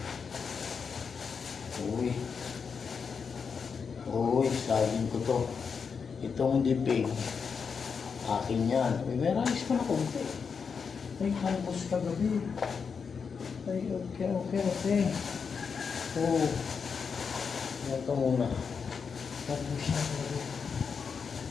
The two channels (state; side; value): quieter; right; 5.9 dB